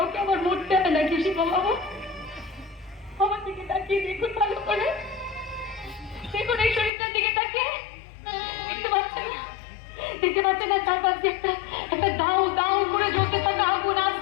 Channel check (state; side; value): drops out; right; at 6.9 s